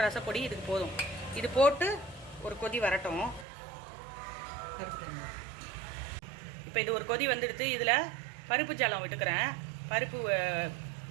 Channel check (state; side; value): drops out; left; at 3.5 s